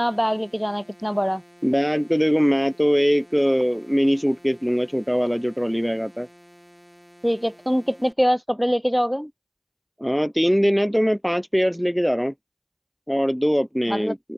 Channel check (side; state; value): both; identical; correlation 1.00